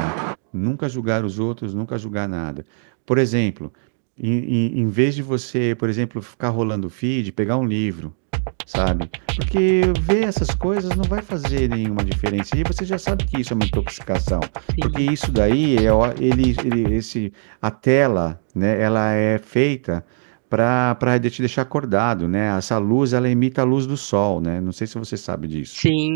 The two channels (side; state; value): left; silent; digital silence